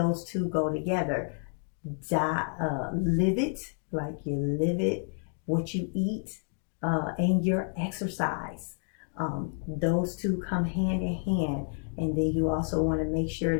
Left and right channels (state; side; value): silent; right; 56 dB below the other